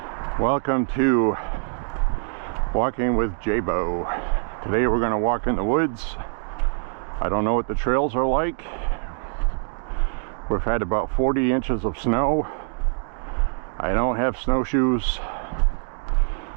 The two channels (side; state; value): left; silent; digital silence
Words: welcome to Walking with J.Beau. Today we're going to walk in the woods. I don't know what the trails are like. We've had about 40 inches of snow. I don't have snowshoes.